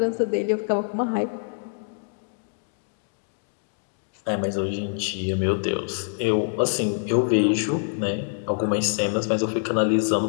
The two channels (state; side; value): silent; right; digital silence